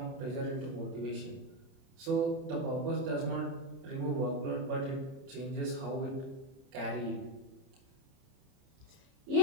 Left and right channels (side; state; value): left; late; 30 ms